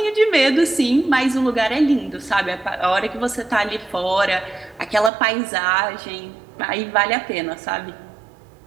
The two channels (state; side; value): drops out; left; at 5.1 s